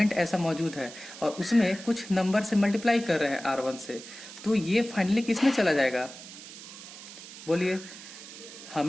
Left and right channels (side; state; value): right; noise; hiss, 15 dB below the sound